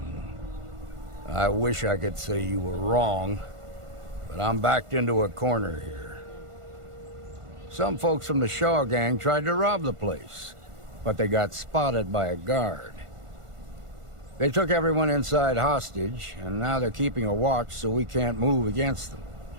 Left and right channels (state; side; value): late; left; 1.5 ms